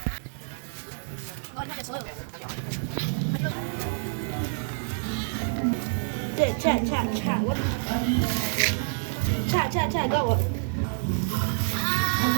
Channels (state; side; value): silent; left; 58 dB below the other